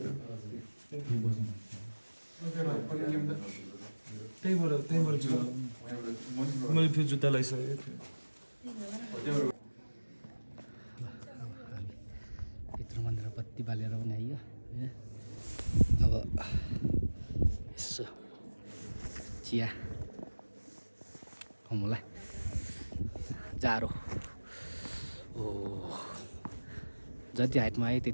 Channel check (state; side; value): inverted; both; correlation -1.00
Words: त्यहीँबाट छु मैले फेरि जुत्ता लगाइसकेको थिएँ भित्र मन्दिर बत्ती बालेर पनि आइयो अब यसो चिया खाउँला जाडो ओ जति हाइटमा आयो